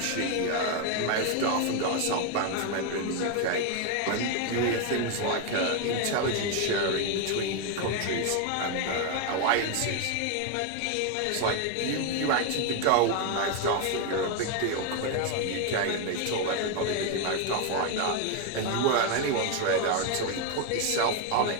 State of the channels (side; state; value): both; different; correlation 0.01